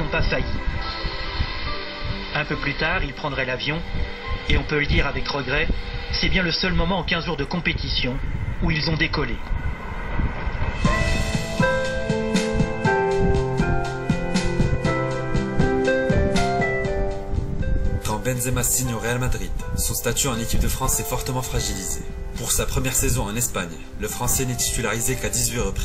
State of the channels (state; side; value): identical; both; correlation 1.00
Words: pas failli. Un peu plus tard, ils prendraient l'avion, et on peut le dire avec regret, c'est bien le seul moment en 15 jours de compétition où ils ont décollé. Quand Benzema signe au Real Madrid, son statut en équipe de France est fortement fragilisé. Pour sa première saison en Espagne, le Français n'est titularisé qu'à 18